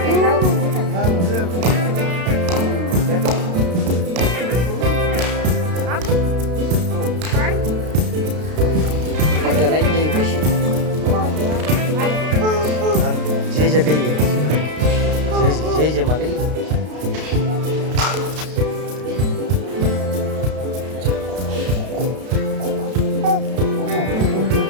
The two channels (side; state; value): left; late; 32 ms